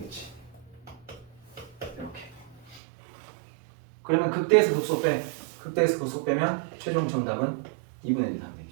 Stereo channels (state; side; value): drops out; left; at 2.8 s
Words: 이렇게. 그러면 극대에서 극소 빼. 극대에서 극소 빼면 최종 정답은 2분의 1 하면